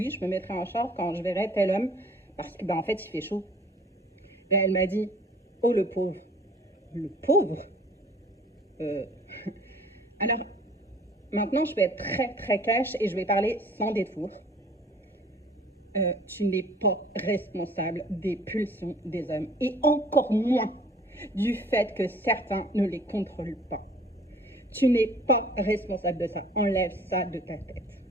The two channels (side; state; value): both; normal; correlation 0.53